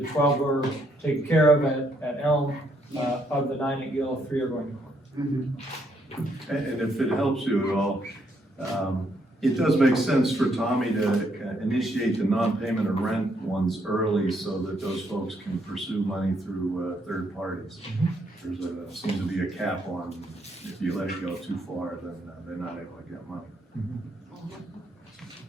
12 were taken care of at Elm, of the 9 at Gill, 3 are going to court. And if it helps you at all, it does make sense for Tommy to initiate the non-payment of rent ones early so that those folks can pursue money through third parties. Seems to be a cap on, if you let it go too far, then they're not able to get money.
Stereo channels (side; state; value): both; normal; correlation 0.73